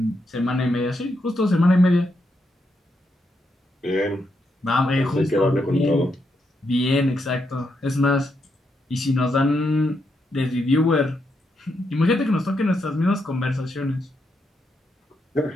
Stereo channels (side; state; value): both; normal; correlation 0.81